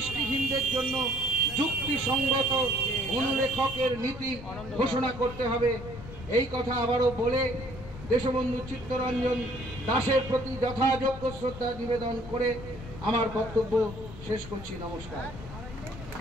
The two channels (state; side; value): noise; left; rumble, 13 dB below the sound